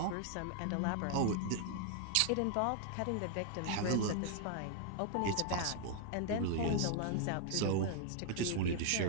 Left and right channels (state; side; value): different; both; correlation 0.00